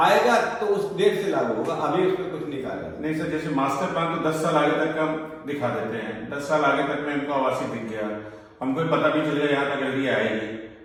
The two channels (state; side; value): identical; both; correlation 1.00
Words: तो उस डेट से लागू होगा, अभी उसमें कुछ नहीं कहा जाता। नहीं सर, जैसे मास्टर प्लान तो 10 साल आगे तक का दिखा देते हैं, 10 साल आगे तक में इनको आवासीय दिख गया, हमको पता भी चल गया यहाँ तक एलडीए आएगी,